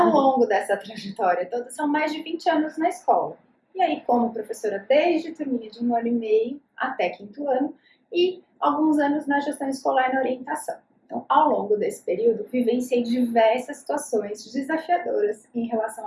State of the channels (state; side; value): identical; both; correlation 1.00